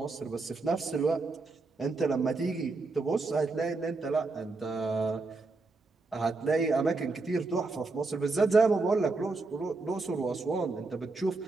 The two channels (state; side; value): quieter; left; 3.6 dB